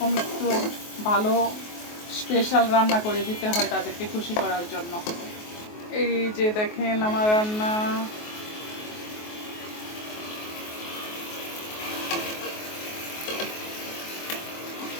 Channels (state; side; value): late; right; 23 ms